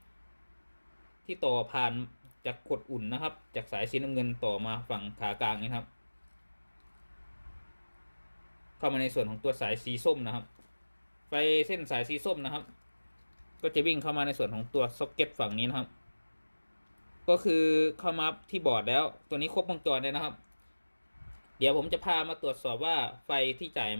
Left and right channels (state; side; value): inverted; both; correlation -1.00